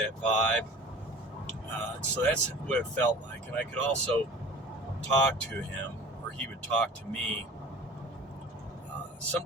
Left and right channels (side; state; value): both; normal; correlation 0.42